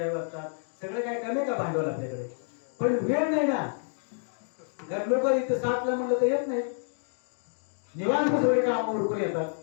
वाटतात. सगळं काय कमी का भांडवल आपल्याकडे? पण वेळ नाही ना. कारण लोक इथं 7ला म्हणलं तर येत नाही, निवांत सगळे काम उरकून येतात.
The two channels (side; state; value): right; silent; digital silence